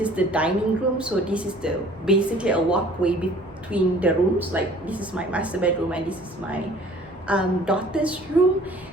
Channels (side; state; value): both; normal; correlation 0.52